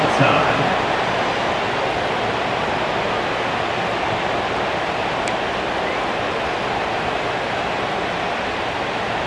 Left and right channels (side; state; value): both; identical; correlation 1.00